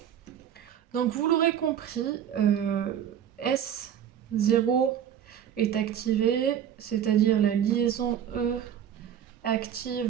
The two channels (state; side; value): quieter; left; 9.6 dB